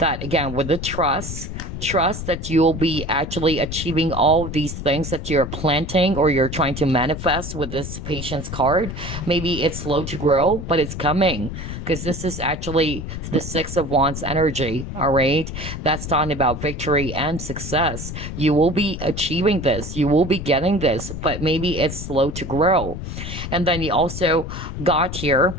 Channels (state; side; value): noise; left; rumble, 7 dB below the sound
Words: again, with the trust that you'll be actually achieving all of these things that you're planting or you're trying to manifest with this patience card. Maybe it's slow to grow, but it's coming, because this is actually the Six of Wands energy, all right? That's talking about victory and success. You will be achieving this. You will be getting this, but maybe it's slow to grow. And then you also got here